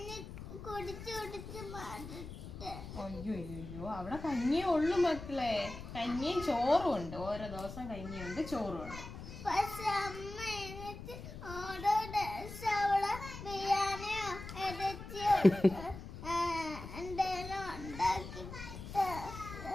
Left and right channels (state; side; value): noise; left; rumble, 11 dB below the sound